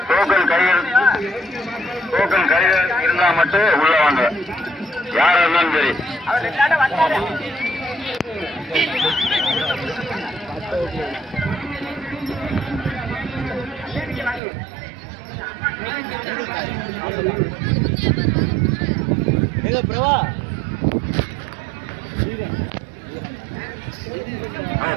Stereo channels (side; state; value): left; drops out; at 14.4 s